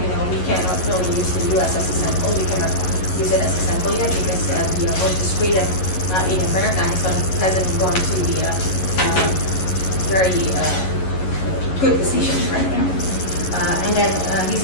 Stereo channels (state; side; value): late; right; 11 ms